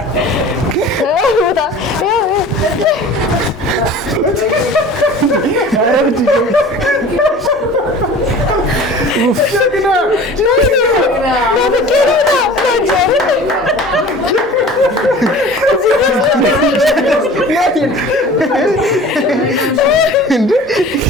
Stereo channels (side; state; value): both; normal; correlation 0.42